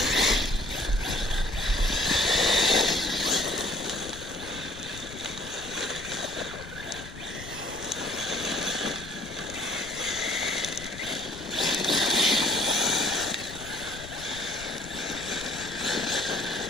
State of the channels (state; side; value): noise; left; rumble, 15 dB below the sound